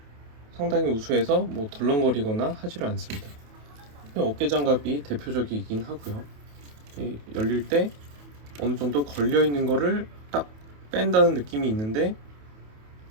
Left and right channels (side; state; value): left; late; 28 ms